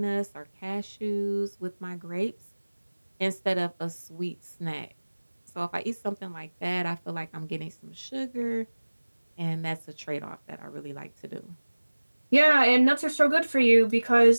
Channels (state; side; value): inverted; both; correlation -1.00